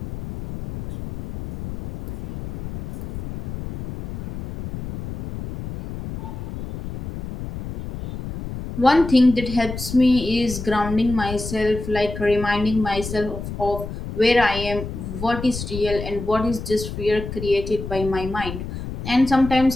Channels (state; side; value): noise; left; rumble, 9 dB below the sound